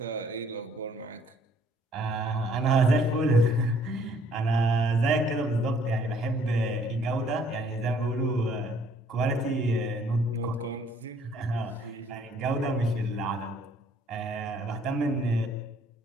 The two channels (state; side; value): normal; both; correlation 0.62